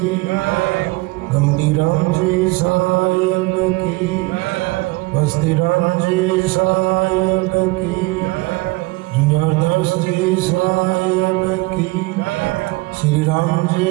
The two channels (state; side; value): quieter; left; 23.4 dB